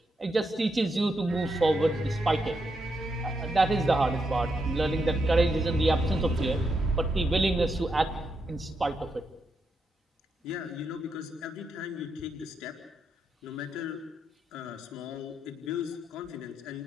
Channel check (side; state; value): both; normal; correlation 0.82